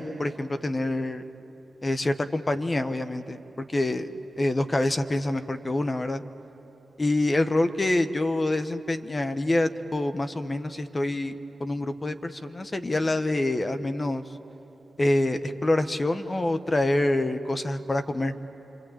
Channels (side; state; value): both; normal; correlation 0.96